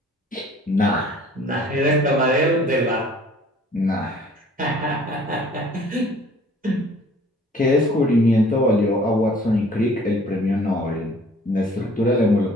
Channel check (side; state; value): both; normal; correlation 0.53